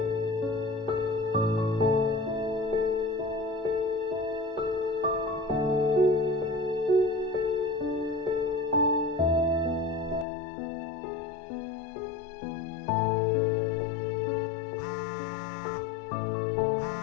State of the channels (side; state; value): right; drops out; at 10.2 s